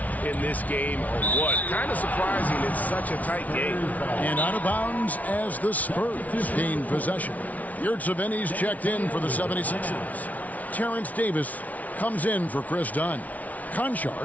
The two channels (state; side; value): late; right; 0.072 ms